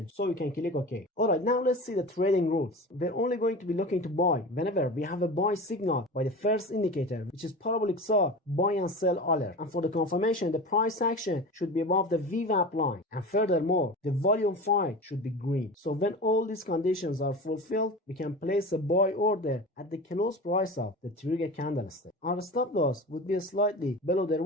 so you can click OK. Alright, now let's see the trading rules. We're only going to be looking to buy whenever we have a buy signal by the first indicator, which is parabolic saw buy and sell alert. And for the confirmation, the price action should be above the VWAP line. And furthermore, the volume 5 should be green. So when all these conditions are fulfilled, we can place a buy order at the close price of the trigger candlestick. Our stop loss would be slightly below the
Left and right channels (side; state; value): both; normal; correlation 0.31